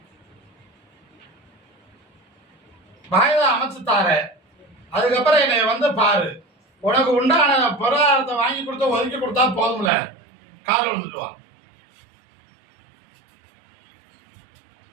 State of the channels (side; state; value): left; drops out; at 9.9 s